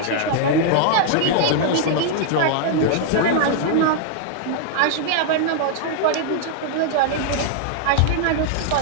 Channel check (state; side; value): different; both; correlation -0.01